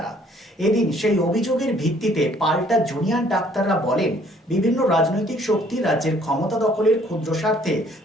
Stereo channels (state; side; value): normal; both; correlation 0.60